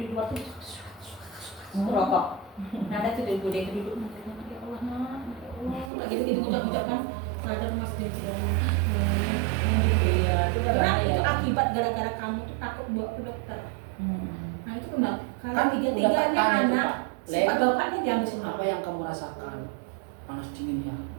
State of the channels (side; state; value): left; drops out; at 5.9 s